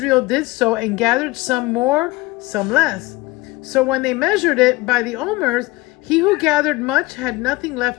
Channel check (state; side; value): quieter; right; 21.0 dB